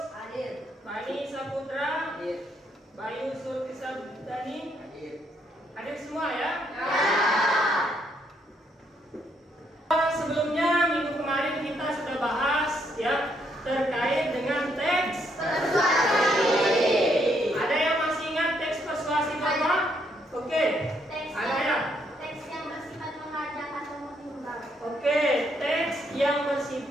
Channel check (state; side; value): normal; both; correlation 0.73